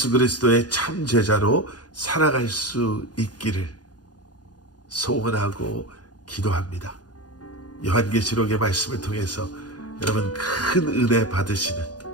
그리스도의 참 제자로 살아갈 수 있기를 소원하고 기도합니다. 요한계시록의 말씀을 통해서 여러분 큰 은혜 받으시는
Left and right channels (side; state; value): right; late; 0.69 ms